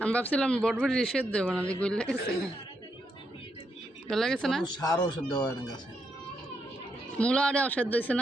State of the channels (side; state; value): both; normal; correlation 0.80